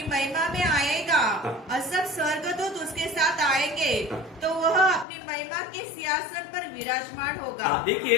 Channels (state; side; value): drops out; right; at 5.1 s